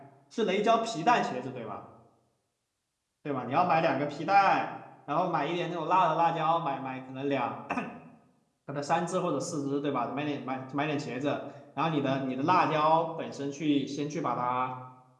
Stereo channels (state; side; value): identical; both; correlation 1.00